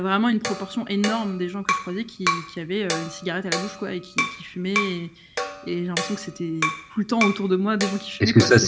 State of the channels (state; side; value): identical; both; correlation 1.00